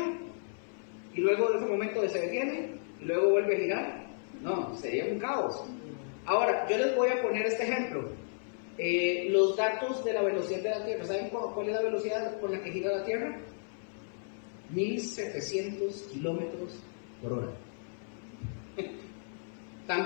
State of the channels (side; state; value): right; silent; 55 dB below the other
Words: y luego de ese momento se detiene y luego vuelve a girar. No, sería un caos. Ahora, yo les voy a poner este ejemplo. Los datos de la velocidad de la Tierra. ¿Saben cuál es la velocidad con la que gira la Tierra? 1700 kilómetros por hora.